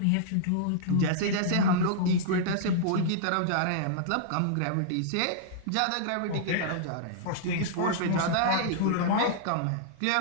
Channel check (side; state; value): both; different; correlation -0.02